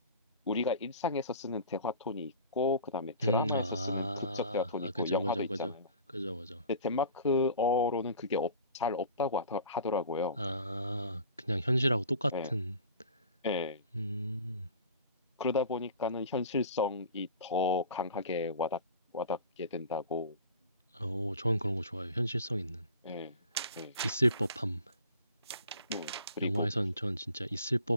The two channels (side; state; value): both; inverted; correlation -0.41